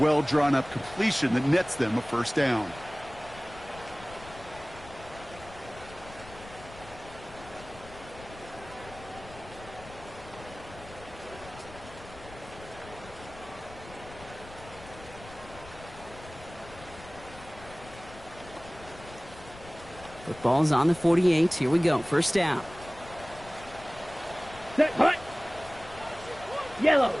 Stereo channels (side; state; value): left; noise; rumble, 18 dB below the sound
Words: well-drawn-up completion that nets them a first down. Football's on the 48. Here we go. First down. Set, hut. Yellow,